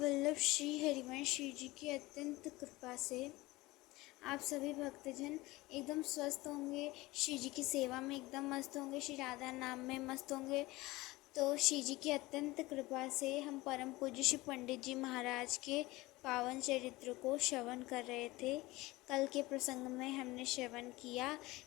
श्री हरिवंश श्री जी की अत्यंत कृपा से आप सभी भक्तजन एकदम स्वस्थ होंगे, श्री जी की सेवा में एकदम मस्त होंगे, श्री राधा नाम में मस्त होंगे। तो श्री जी की अत्यंत कृपा से हम परम पूज्य श्री पंडित जी महाराज के पावन चरित्र को श्रवण कर रहे थे। कल के प्रसंग में हमने श्रवण किया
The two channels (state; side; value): quieter; right; 20.2 dB